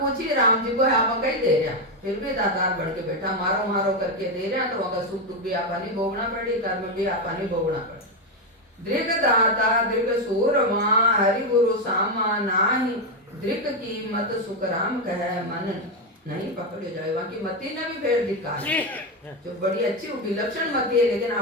राम जी को आप कहीं दे रहा फिर भी दातार बढ़ के बैठा मारो मारो करके दे रहा तो वहां का सुख दुख भी आपा नहीं भोगना पड़ी कर्म भी आपा नहीं भोगना पड़ी। दृक दाता दृक सूरमा हरि गुरु सामा नाही दृक की मत सुख राम कह मन नहीं पकड़े जाए। वहां की मती ने भी फिर धिक्कार जो बड़ी अच्छी विलक्षण मती है लेकिन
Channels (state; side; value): normal; both; correlation 0.07